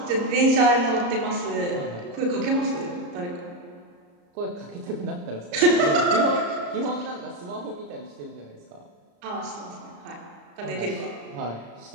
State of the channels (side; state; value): left; late; 34 ms